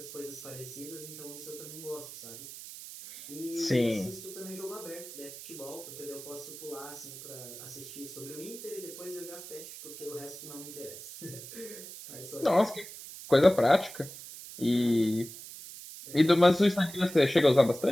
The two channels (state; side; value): noise; right; hiss, 13 dB below the sound